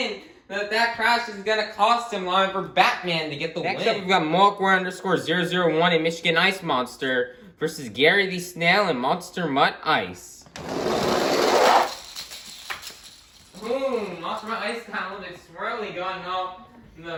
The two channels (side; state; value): both; identical; correlation 1.00